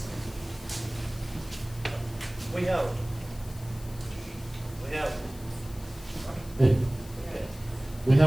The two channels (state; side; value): noise; left; hiss, 19 dB below the sound